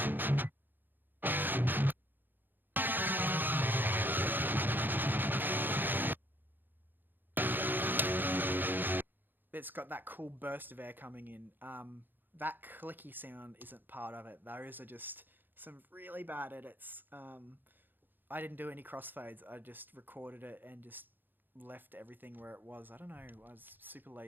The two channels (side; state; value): left; late; 0.092 ms